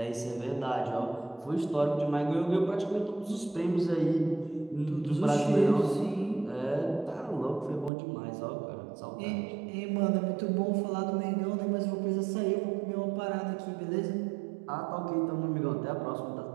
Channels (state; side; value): drops out; left; at 7.9 s